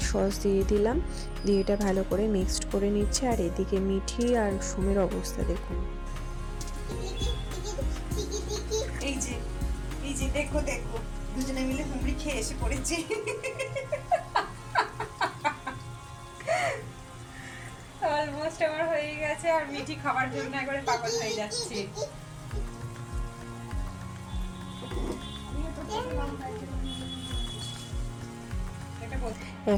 সস দিয়ে দিলাম, দিয়ে এটা ভালো করে মিক্সড করে নিচ্ছে। আর এদিকে মিঠি আর সোমের অবস্থা দেখুন, এই যে দেখো দেখো, দুজনে মিলে হুমড়ি খেয়ে এসে পড়েছে। অলমোস্ট আমার হয়ে গেছে, আর মিঠি খাবার জন্য একবারে পাগল হয়ে যাচ্ছে।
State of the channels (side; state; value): both; identical; correlation 1.00